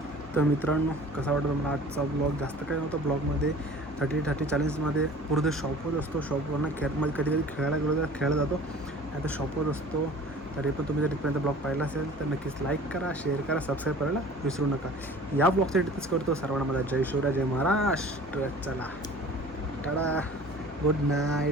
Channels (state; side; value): normal; both; correlation 0.45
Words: तर मित्रांनो कसा वाटतं मला आजचा ब्लॉग. जास्त काही नव्हतं ब्लॉगमध्ये. 30 40मध्ये पूर्ण शॉपवर असतो. शॉपवरनं मध्ये कधी कधी खेळायला गेलो तर खेळायला जातो. नाही तर शॉपवर असतो. तरी पण तुम्ही जर तिथपर्यंत ब्लॉग पाहिला असेल तर नक्कीच लाईक करा, शेअर करा, सबस्क्राईब करायला विसरू नका. या ब्लॉगसाठी तिथेच करतो. सर्वांना माझा जय शिवराय, जय महाराष्ट्र. चला टाळा, गुड